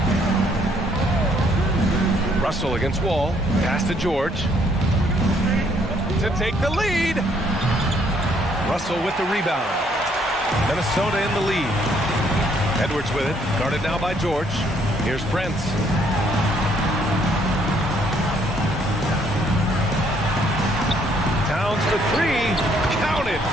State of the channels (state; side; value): normal; both; correlation 0.67